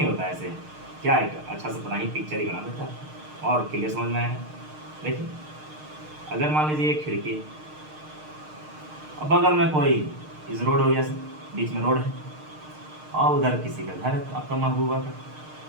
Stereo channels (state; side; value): late; left; 6.5 ms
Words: होता है ऐसे, क्या है अच्छा से बना ही पिक्चर ही बना देता है और क्लियर समझ में आया। देखिए अगर मान लीजिए एक खिड़की और बगल में कोई इस रोड हो गया सर, बीच में रोड है और उधर किसी का घर है आपका महबूबा का,